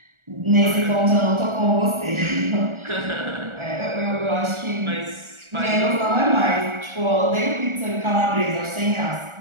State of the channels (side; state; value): left; late; 1.4 ms